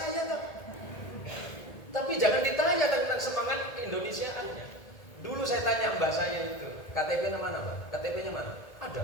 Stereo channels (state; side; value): late; right; 1.8 ms